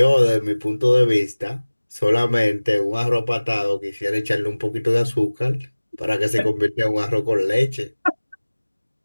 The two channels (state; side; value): inverted; both; correlation -1.00